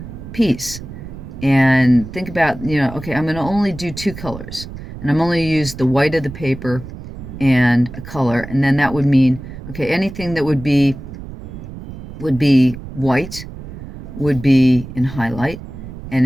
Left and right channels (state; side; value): noise; right; rumble, 12 dB below the sound